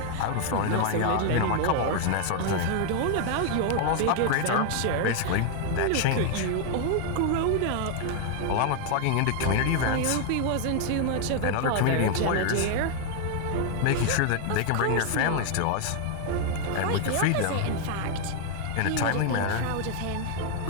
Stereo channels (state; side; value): different; both; correlation 0.00